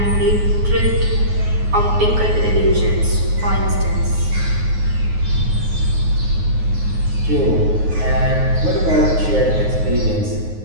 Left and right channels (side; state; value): left; late; 9.5 ms